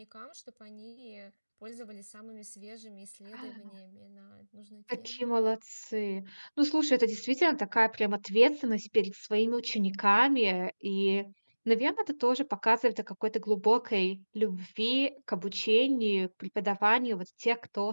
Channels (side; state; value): both; inverted; correlation -1.00